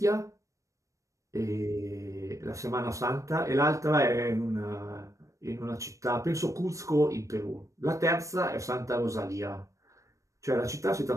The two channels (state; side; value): late; left; 0.15 ms